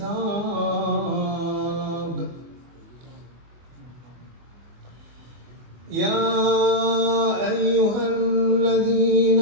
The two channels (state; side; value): late; left; 24 ms